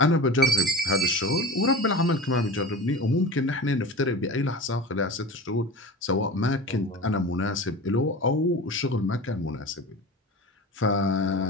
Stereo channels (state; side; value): normal; both; correlation 0.33